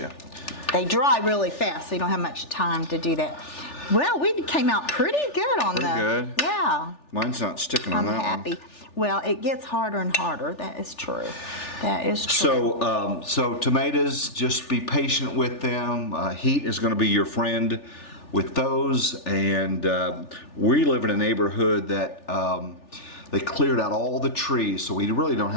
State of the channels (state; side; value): late; right; 3.4 ms